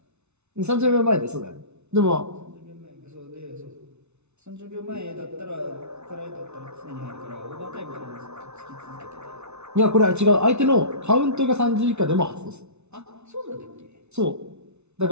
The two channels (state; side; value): late; left; 0.81 ms